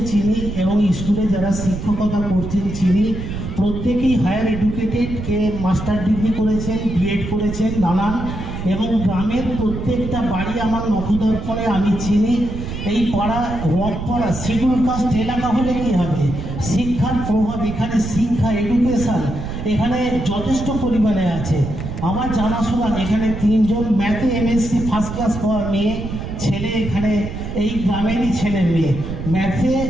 চিনি এবং স্কুলে যারা শিক্ষকতা করছেন চিনি। প্রত্যেকেই হায়ার এডুকেটেড, কে মাস্টার ডিগ্রি করেছেন, বিএড করেছেন নানান, এবং গ্রামের প্রত্যেকটা বাড়ি আমার নখদর্পণে আমি চিনি। এই পাড়া রথপাড়া শিডিউল কাস্ট এলাকা হলে কী হবে, শিক্ষার প্রভাব এখানে, শিক্ষা এডুকেশান এখানে যথেষ্ট পরিমাণে আছে। আমার জানাশোনা এখানে 3 জন ম্যাথে এমএসসি ফার্স্ট ক্লাস পাওয়া মেয়ে ছেলে, এখানে এই গ্রামেরই ছেলে মেয়ে ম্যাথে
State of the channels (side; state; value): right; noise; rumble, 7 dB below the sound